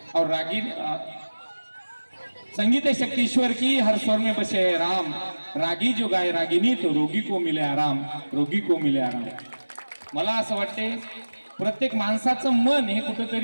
और रागिनी, संगीत है शक्ति ईश्वर की, हर स्वर में बसे है राम. रागी जो गाय रागिनी, तो रोगी को मिले आराम, रोगी को मिले आराम. मला असं वाटते प्रत्येक माणसाचं मन हे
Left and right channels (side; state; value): both; inverted; correlation -1.00